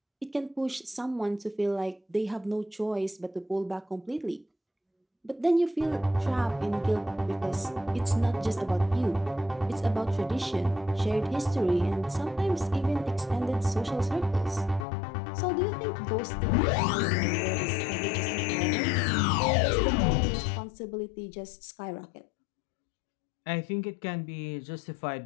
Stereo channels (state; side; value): drops out; right; at 14.9 s